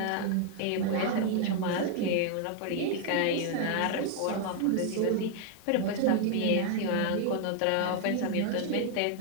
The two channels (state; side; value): different; both; correlation 0.00